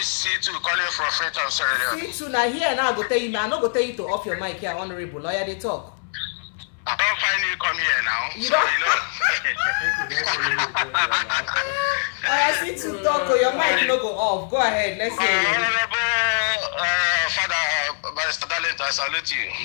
C2 calling from Freetown, Sierra Leone. C2 now here now I go tell you, man. I not go tell you to off your mic here, honorable lawyer. They talk. I don't finally come here now. You don't. I see to talk. Or your mic no go off. Go ahead. Let's hear you. Honorable Father Barrister Dalent, I salute you.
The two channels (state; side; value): silent; right; 63 dB below the other